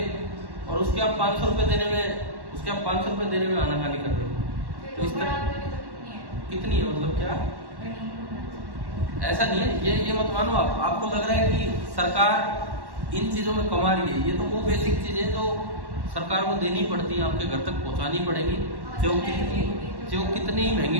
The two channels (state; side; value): late; left; 1.1 ms